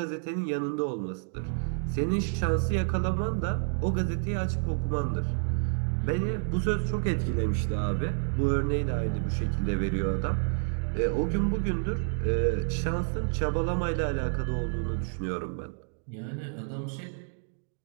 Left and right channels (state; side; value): silent; left; digital silence